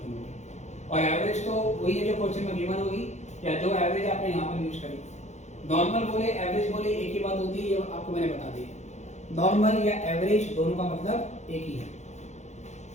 होगी, और एवरेज तो वही है जो क्वेश्चन में गिवन होगी या जो एवरेज आपने यहाँ पर यूज करी। नॉर्मल बोले एवरेज बोले एक ही बात होती है, ये आपको मैंने बता दी। नॉर्मल या एवरेज दोनों का मतलब एक ही है।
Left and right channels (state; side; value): late; right; 0.33 ms